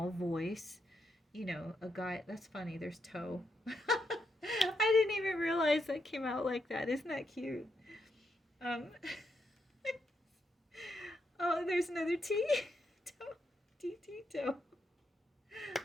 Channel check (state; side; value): normal; both; correlation 0.81